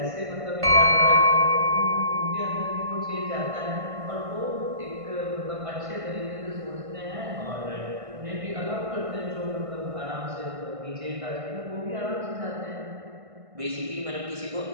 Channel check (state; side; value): late; left; 1.5 ms